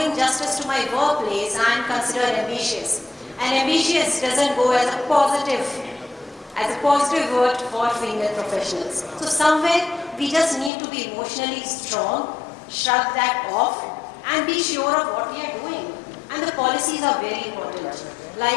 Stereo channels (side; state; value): right; drops out; at 10.7 s